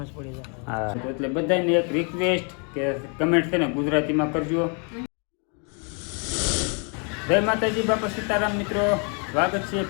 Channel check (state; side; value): quieter; right; 38.0 dB